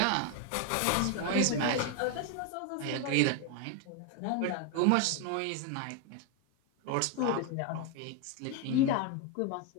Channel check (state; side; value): different; both; correlation 0.01